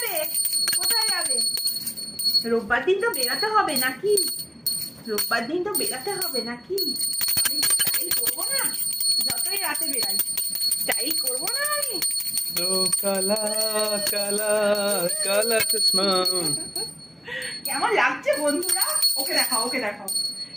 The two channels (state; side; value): identical; both; correlation 1.00